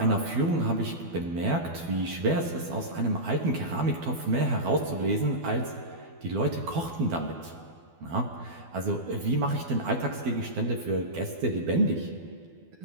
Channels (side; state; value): left; late; 12 ms